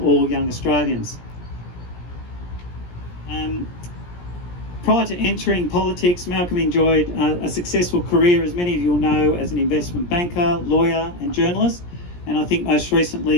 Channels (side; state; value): right; late; 17 ms